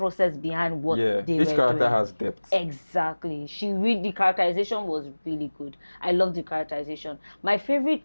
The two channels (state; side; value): inverted; both; correlation -1.00